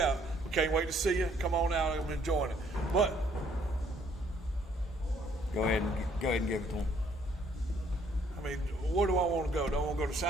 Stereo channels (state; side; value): normal; both; correlation 0.64